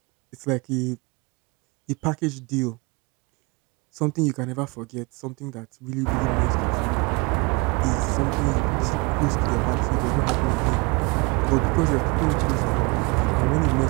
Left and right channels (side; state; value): left; quieter; 28.5 dB